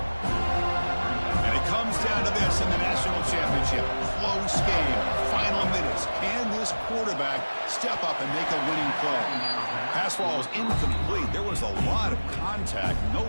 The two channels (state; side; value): inverted; both; correlation -1.00